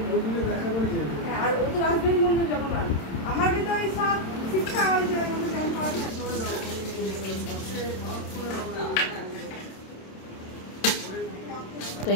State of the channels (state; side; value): late; right; 27 ms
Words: ওদিকে দেখা করে যাবে। হ্যাঁ, আর ও তো রাজবাড়ি মন্দির যাবো না আমার কিন্তু ওই সব শিক্ষা হয়েছে ওই মধ্যে যেমন পাওয়া যায় তো